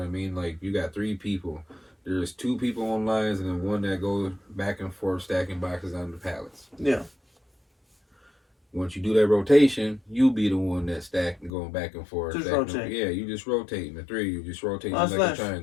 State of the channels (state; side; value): drops out; right; at 11.5 s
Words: I mean? Like, you got 3 people. There's 2 people on lines and then 1 that goes back and forth stacking boxes on the pallets. Yeah. Once you do that rotation, you be the one that's stacking, going back and forth. Just rotate. Yeah, you just rotating. The 3, you just rotating like a